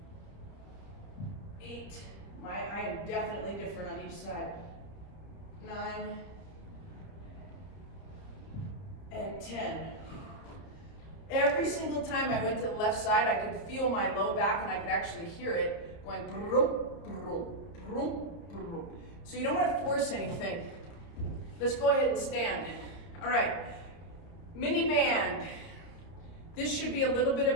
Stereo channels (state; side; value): late; right; 30 ms